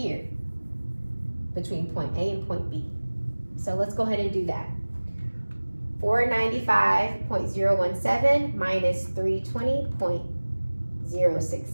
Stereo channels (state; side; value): inverted; both; correlation -1.00